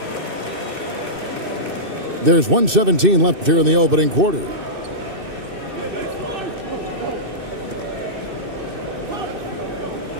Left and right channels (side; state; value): left; late; 2.6 ms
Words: There's 1:17 left here in the opening quarter.